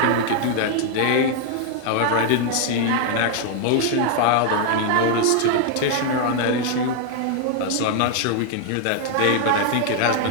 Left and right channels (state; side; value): different; both; correlation 0.00